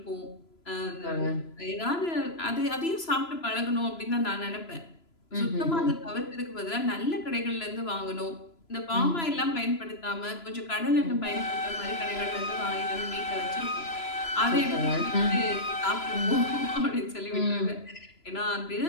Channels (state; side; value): late; right; 3.0 ms